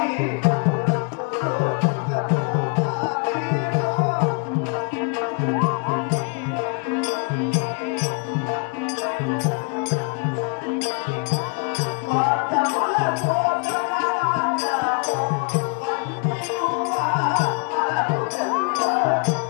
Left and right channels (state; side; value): quieter; right; 34.7 dB